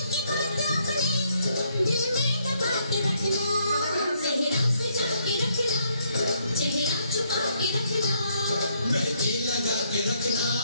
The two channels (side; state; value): both; inverted; correlation -0.71